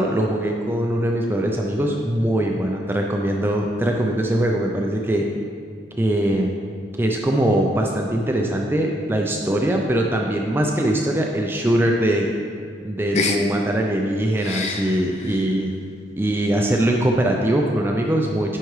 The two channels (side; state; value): both; normal; correlation 0.75